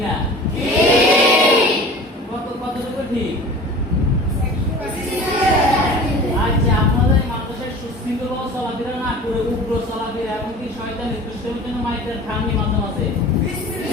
না? কতটুকু ঠিক? আচ্ছা, আপনাদের এই মাদ্রাসায় সুশৃঙ্খল চলাফেরা না করে উগ্র চলাফেরা এমনকি শয়তান দুষ্টামির জন্য মাইর খাননি মাঝে মাঝে,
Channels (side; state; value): both; normal; correlation 0.40